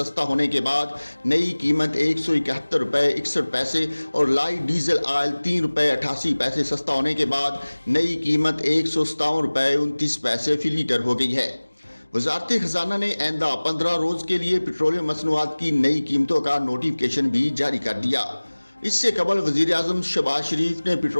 होने के बाद नई कीमत ₹171.61 और लाइट डीजल ऑयल ₹3.88 सस्ता होने के बाद नई कीमत ₹157.29 फी लीटर हो गई है। वजारत खजाना ने आइंदा 15 रोज के लिए पेट्रोलियम मसनूआत की नई कीमतों का नोटिफिकेशन भी जारी कर दिया। इससे कबल वजीर आजम शहबाज शरीफ ने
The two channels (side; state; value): both; inverted; correlation -1.00